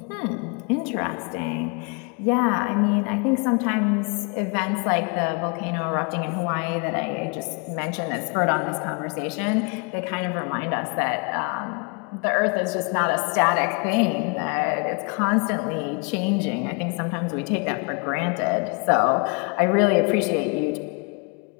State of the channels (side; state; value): right; quieter; 34.2 dB